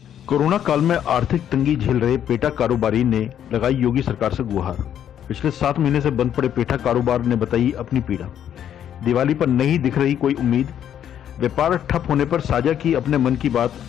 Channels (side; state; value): right; quieter; 9.9 dB